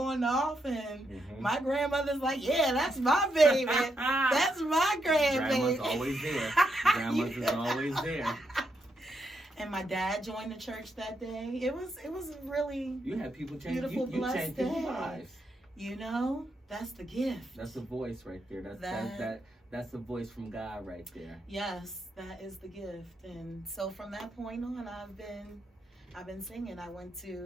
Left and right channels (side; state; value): both; normal; correlation 0.80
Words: off, and my grandmother's like, yeah, that's my baby. That's my grandbaby. Grandma's always there. Grandma's always there. And my dad joined the church that day. It was really You had people change. beautiful, You blessed changed people's day. lives. You know, that's the gift. That's the voice right there. That's the voice from God right there. Yes, that is the gift. And so from that point on, I've been singing. I went